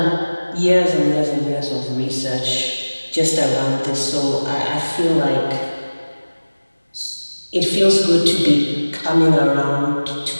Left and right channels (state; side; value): inverted; both; correlation -1.00